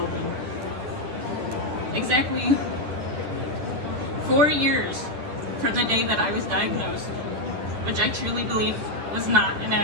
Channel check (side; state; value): left; late; 9.9 ms